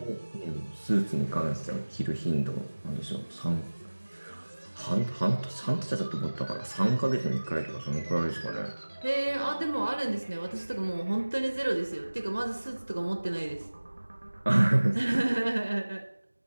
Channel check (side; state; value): both; inverted; correlation -1.00